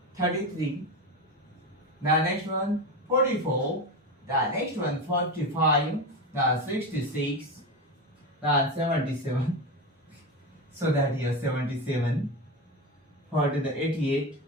33. The next one, 44. The next one, 45. The 66. The 77. So that here 77. For the 88.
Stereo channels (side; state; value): both; normal; correlation 0.20